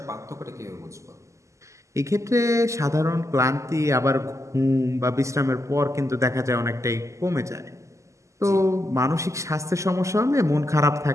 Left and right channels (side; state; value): left; late; 0.15 ms